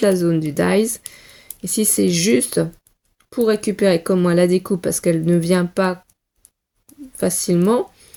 zone du dies. Et si c'est juste pour récupérer comme moi la découpe parce qu'elle ne vient pas facilement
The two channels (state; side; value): identical; both; correlation 1.00